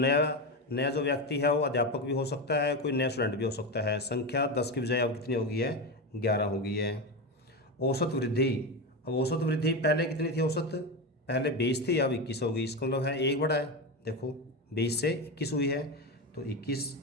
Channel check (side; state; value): both; normal; correlation 0.17